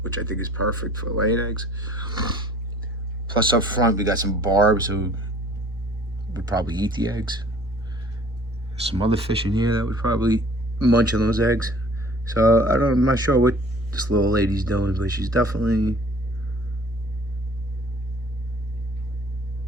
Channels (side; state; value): both; normal; correlation 0.52